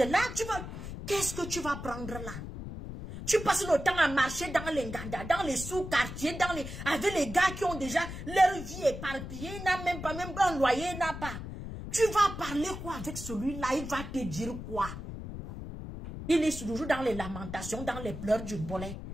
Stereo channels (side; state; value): left; noise; rumble, 9 dB below the sound